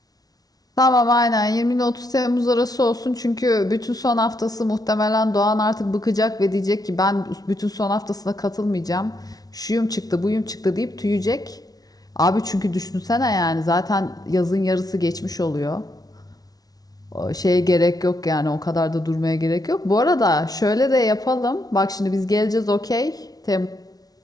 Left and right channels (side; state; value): right; late; 0.18 ms